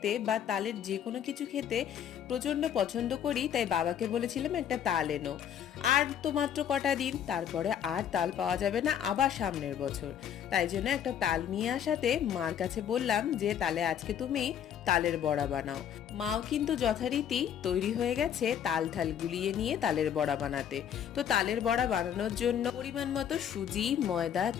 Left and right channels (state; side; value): quieter; right; 9.2 dB